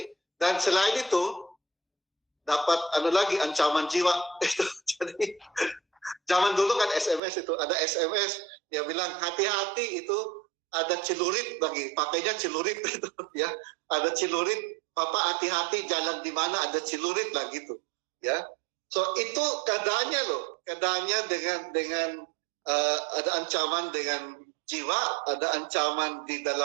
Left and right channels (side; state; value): left; drops out; at 7.2 s